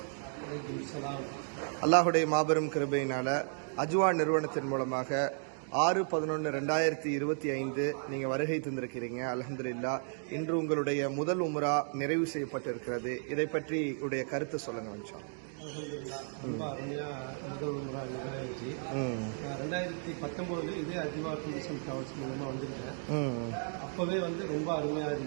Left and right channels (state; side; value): silent; left; 55 dB below the other